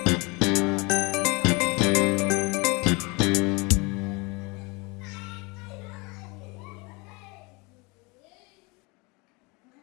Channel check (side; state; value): right; quieter; 27.4 dB